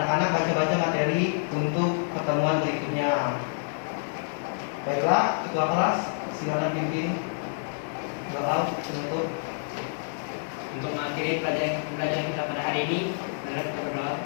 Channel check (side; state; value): right; silent; digital silence